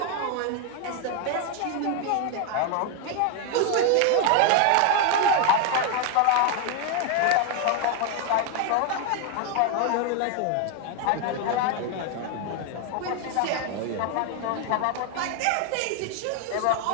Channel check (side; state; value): both; different; correlation 0.01